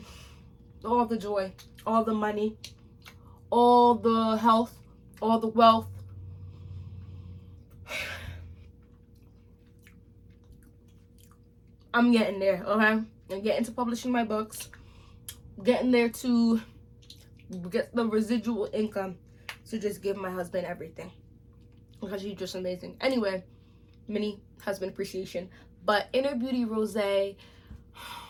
all the joy, all the money, all the health, all the wealth. I'm getting there, okay? I'm getting to publishing my books. Getting there to get the residual income to just give my husband everything, because he's just amazing. Anyway, mini husband appreciation. But Inner Beauty Rosé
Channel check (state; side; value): identical; both; correlation 1.00